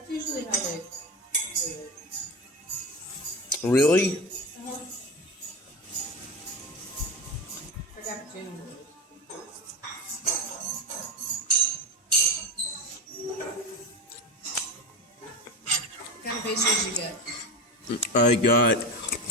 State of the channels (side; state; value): both; normal; correlation 0.22